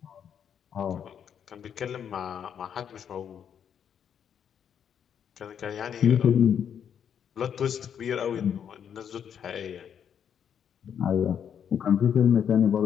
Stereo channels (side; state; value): right; quieter; 8.4 dB